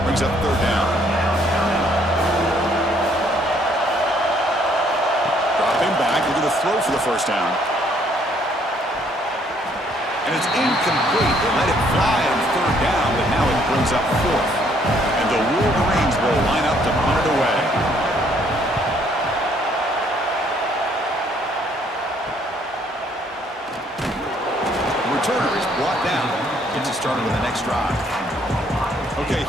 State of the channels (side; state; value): both; normal; correlation 0.65